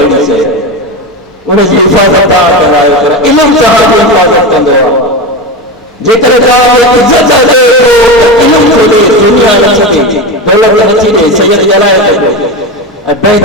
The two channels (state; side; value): normal; both; correlation 0.20